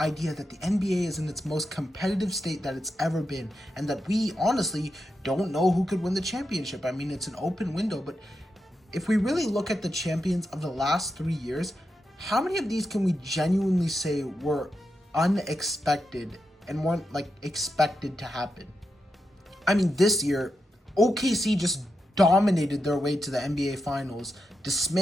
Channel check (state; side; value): normal; both; correlation 0.87